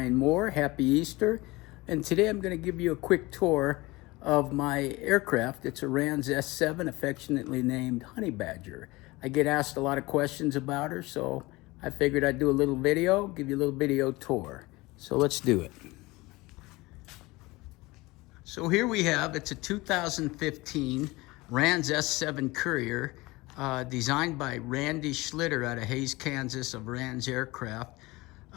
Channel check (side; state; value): right; quieter; 21.7 dB